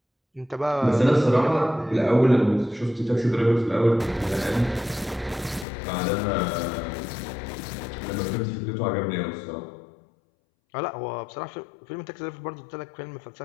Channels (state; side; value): drops out; right; at 5.7 s